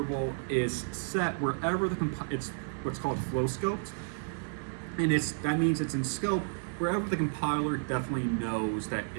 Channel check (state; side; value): silent; left; 57 dB below the other